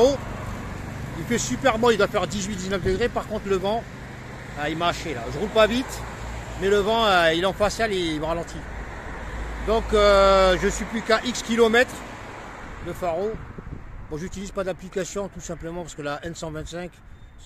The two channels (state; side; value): identical; both; correlation 1.00